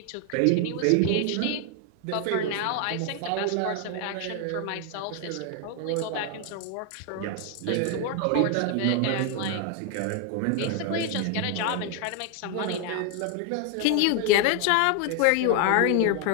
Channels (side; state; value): both; different; correlation 0.01